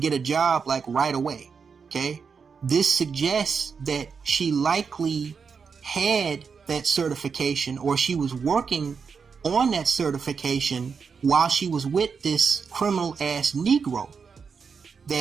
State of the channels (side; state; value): left; quieter; 5.8 dB